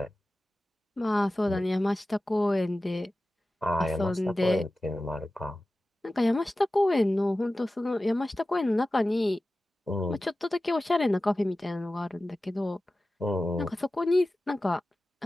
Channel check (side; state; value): both; normal; correlation 0.95